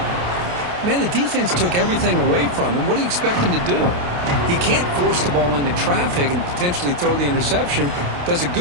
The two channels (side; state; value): left; late; 28 ms